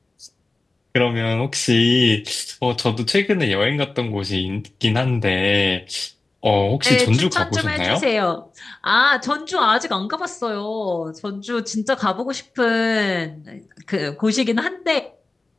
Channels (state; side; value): quieter; right; 3.2 dB